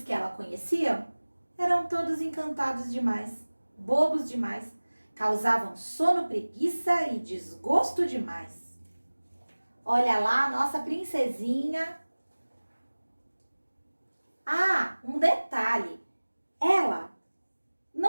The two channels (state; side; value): inverted; both; correlation -1.00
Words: que ela conhecia eram todos encantados demais, bobos demais, causavam sono, preguiça e desgosto demais. Olha lá a nossa princesinha. Um detalhe, ela